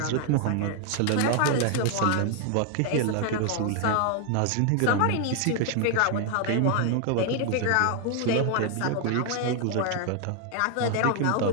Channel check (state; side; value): different; both; correlation 0.00